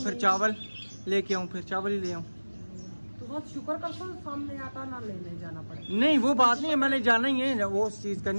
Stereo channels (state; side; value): inverted; both; correlation -1.00